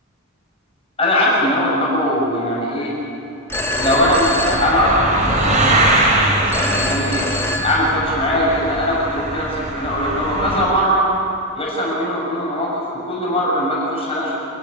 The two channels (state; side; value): normal; both; correlation 0.03